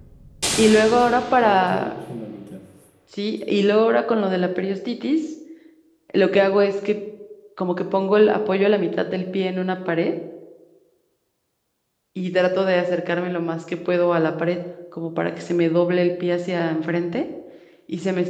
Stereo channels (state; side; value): identical; both; correlation 1.00